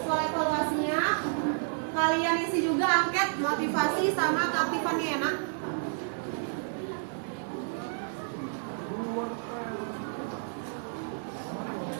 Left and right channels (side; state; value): left; silent; 58 dB below the other